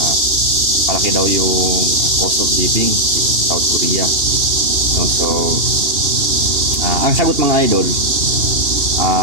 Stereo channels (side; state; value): left; late; 2.9 ms